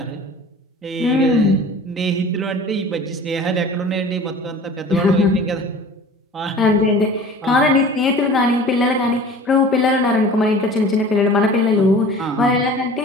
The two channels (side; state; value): both; normal; correlation 0.42